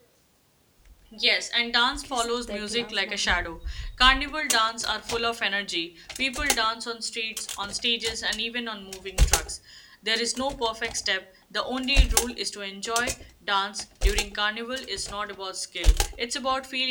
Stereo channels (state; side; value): identical; both; correlation 1.00